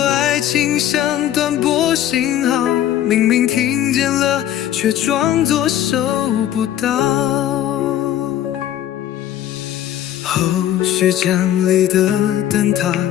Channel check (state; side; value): quieter; right; 11.7 dB